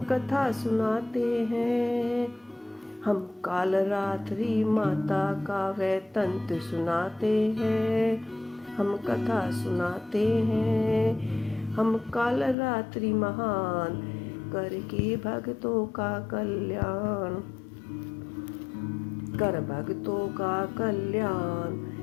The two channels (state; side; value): drops out; right; at 12.6 s